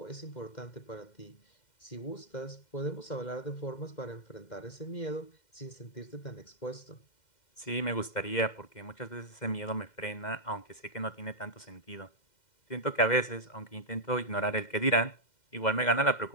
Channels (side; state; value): right; late; 2.1 ms